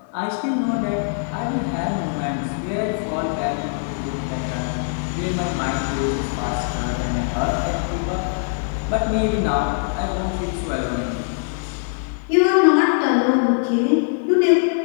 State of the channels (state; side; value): silent; right; 57 dB below the other